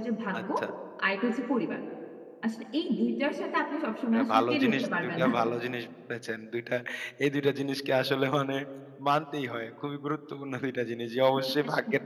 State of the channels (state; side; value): identical; both; correlation 1.00